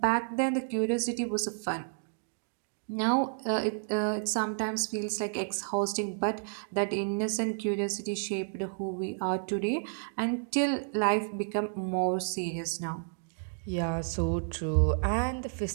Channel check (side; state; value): left; silent; digital silence